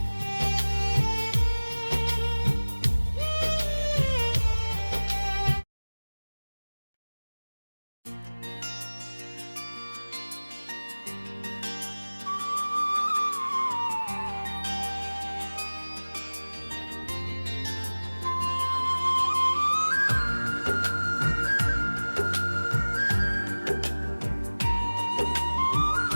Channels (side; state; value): both; inverted; correlation -1.00